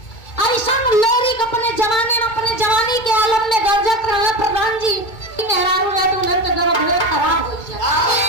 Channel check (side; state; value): right; late; 2.2 ms